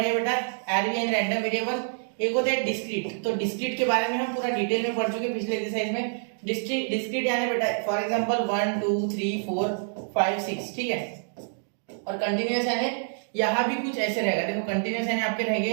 हैं बेटा, आरवी एंड रैंडम वेरिएबल। एक होता है डिस्क्रीट, तो डिस्क्रीट के बारे में हम पूरा डिटेल में पढ़ चुके हैं पिछले एक्सरसाइज में। डिस्क्रीट यानी बेटा फॉर एग्जांपल 1 2 3 4 5 6। ठीक है, और कंटिन्यूअस यानी यहाँ भी कुछ ऐसे रहेगा। देखो कंटिन्यूअस यानी आपके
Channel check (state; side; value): silent; left; digital silence